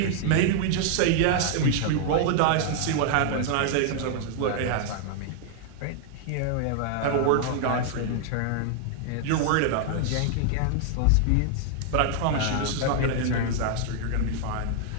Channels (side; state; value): both; different; correlation -0.01